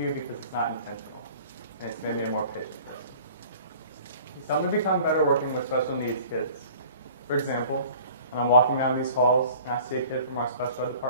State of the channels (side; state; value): both; inverted; correlation -0.48